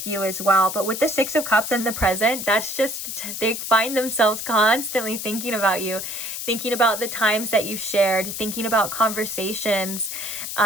you as well. But with the Six of Cups in the present, that's just, they find themselves constantly thinking about you, thinking about the times that you've shared, thinking about conversations,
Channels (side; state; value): left; noise; hiss, 6 dB below the sound